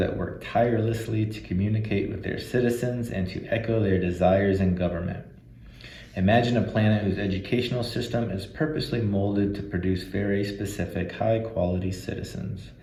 work tirelessly to communicate with their citizens and to echo their desires in government. Imagine a planet whose educational system is purposely molded to produce very specific, high-quality citizens.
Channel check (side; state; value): both; identical; correlation 1.00